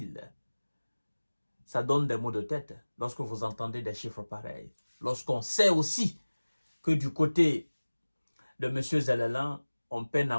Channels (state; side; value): inverted; both; correlation -1.00